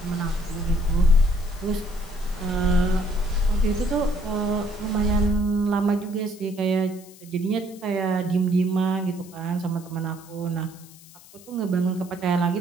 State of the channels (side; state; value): left; noise; hiss, 22 dB below the sound